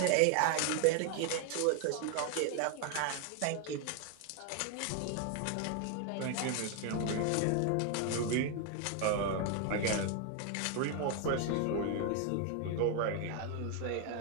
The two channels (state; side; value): different; both; correlation 0.01